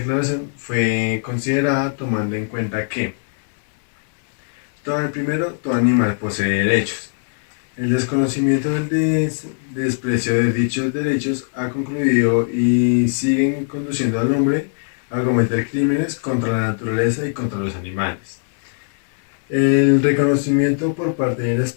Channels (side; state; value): right; silent; digital silence